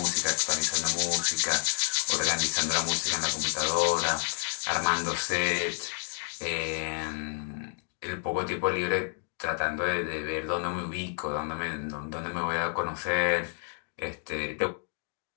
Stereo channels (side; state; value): right; silent; 58 dB below the other